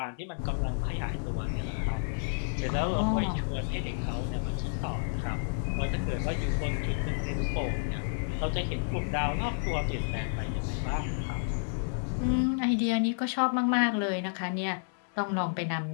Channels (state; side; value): silent; right; digital silence